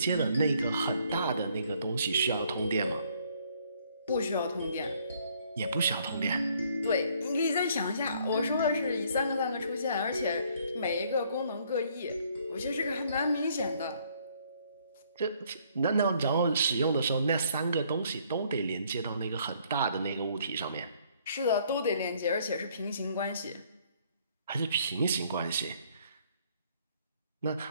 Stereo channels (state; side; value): inverted; both; correlation -0.64